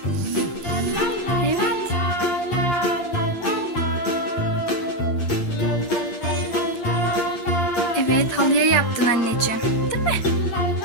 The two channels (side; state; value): right; late; 8.6 ms